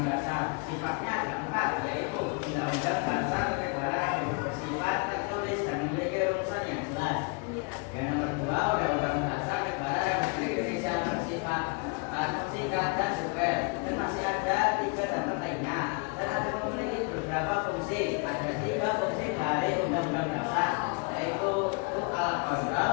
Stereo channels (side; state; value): right; quieter; 33.2 dB